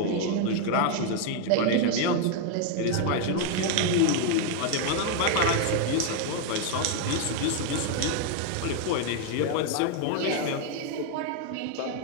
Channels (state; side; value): different; both; correlation 0.01